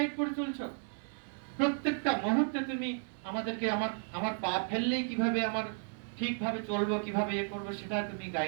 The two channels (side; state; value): left; silent; 55 dB below the other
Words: করে চলছো। প্রত্যেকটা মুহূর্তে তুমি আমাদেরকে আমার পা ফেললেই কিভাবে আমার ঠিকভাবে চলবো, কিভাবে এ করবো, সেটা তুমি